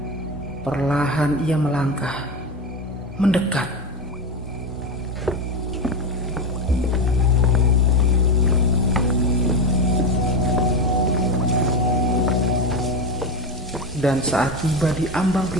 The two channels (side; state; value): both; normal; correlation 0.17